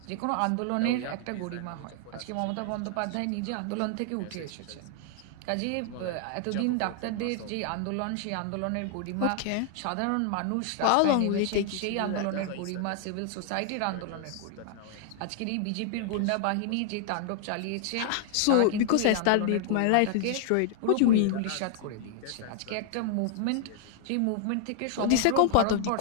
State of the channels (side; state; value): both; different; correlation 0.00